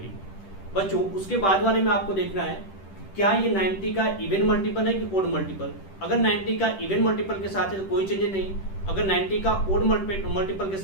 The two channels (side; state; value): right; late; 10 ms